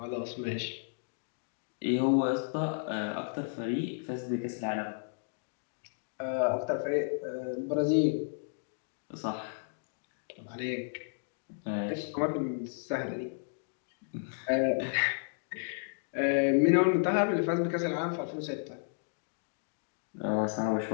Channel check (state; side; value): silent; right; digital silence